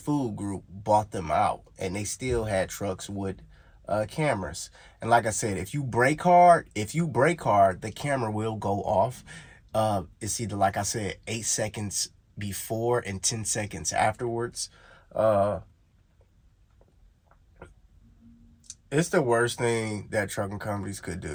Group bought them out, and they still had trucks with cameras. And like I said, if you brake hard, the camera will go off. It's either, like I said, 8 seconds before and 10 seconds afterwards. It's the worst thing that trucking companies could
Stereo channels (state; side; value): identical; both; correlation 1.00